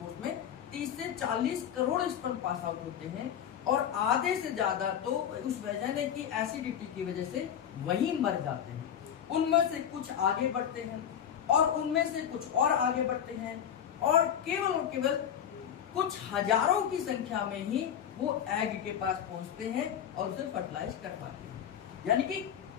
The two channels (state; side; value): quieter; right; 9.2 dB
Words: में 30 से 40 करोड़ स्पर्म पास आउट होते हैं, और आधे से ज्यादा तो उस वेजाइना की एसिडिटी की वजह से वहीं मर जाते हैं। उनमें से कुछ आगे बढ़ते हैं और उनमें से कुछ और आगे बढ़ते हैं, और केवल कुछ हजारों की संख्या में ही वो एग के पास पहुंचते हैं और उसे फर्टिलाइज कर पाते हैं। यानी कि